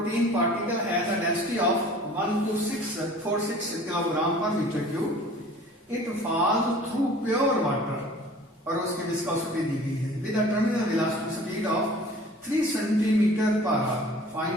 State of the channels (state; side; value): normal; both; correlation 0.47